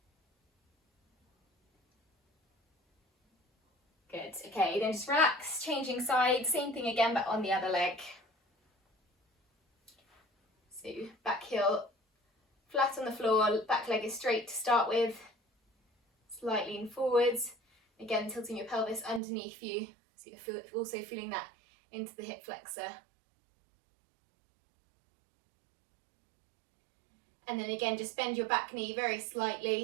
Good, okay, then just relax, changing sides, same thing again but on the other leg. So back heel flat on the floor, back leg is straight to start with. Slight lean forwards, again tilting your pelvis underneath you, so you're also feeling that into the hip flexor. And then again, just bend your back knee very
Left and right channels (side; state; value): left; drops out; at 19.2 s